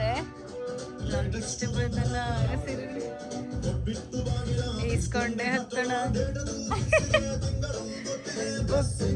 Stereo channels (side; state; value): both; identical; correlation 1.00